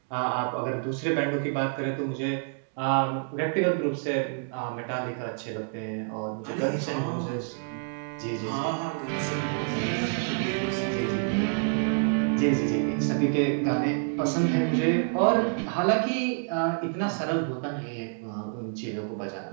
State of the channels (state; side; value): silent; left; 59 dB below the other